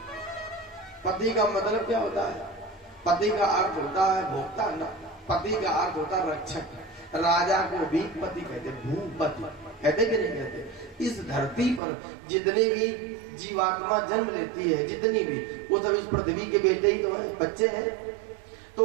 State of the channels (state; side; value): drops out; left; at 11.8 s